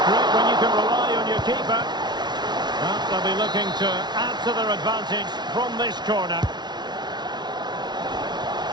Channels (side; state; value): left; late; 0.20 ms